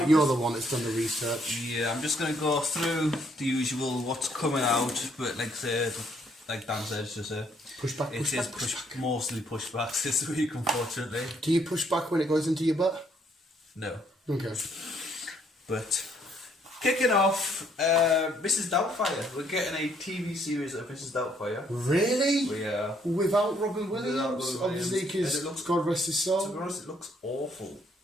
you're the one that's done the research. Yeah, I'm just going to go through the usual what's coming out, but like Dan said, it's just Pushback. Mostly pushbacks this week, unfortunately. Do you push back when it goes into your butt? No. Okay. But kicking off, Mrs. Doubtfire. We're getting a TV series of Mrs. Doubtfire. Really? We are. Without Robin Williams? Obviously, because God rest his soul. To be honest, it looks awful.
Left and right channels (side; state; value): both; normal; correlation 0.68